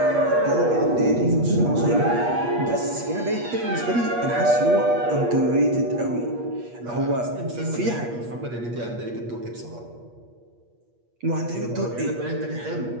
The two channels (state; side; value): late; left; 8.4 ms